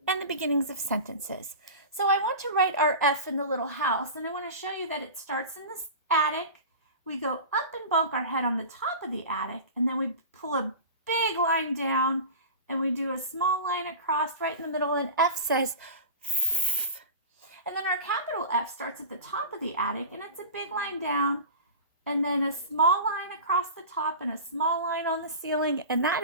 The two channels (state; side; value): inverted; both; correlation -0.32